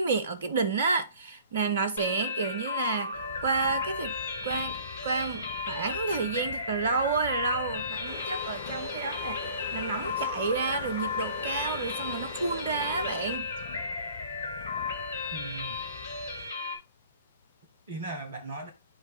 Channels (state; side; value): inverted; both; correlation -0.50